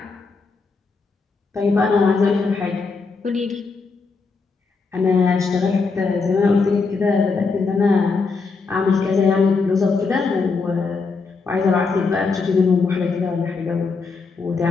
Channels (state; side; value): quieter; right; 4.5 dB